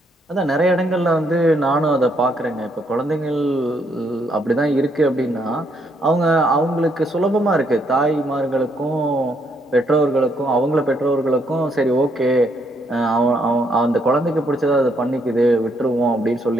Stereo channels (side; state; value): both; normal; correlation 0.73